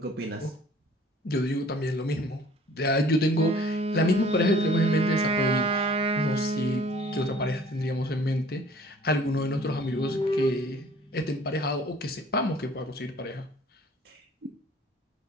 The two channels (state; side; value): normal; both; correlation 0.53